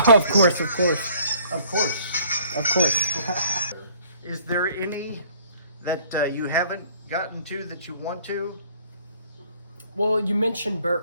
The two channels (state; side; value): inverted; both; correlation -0.57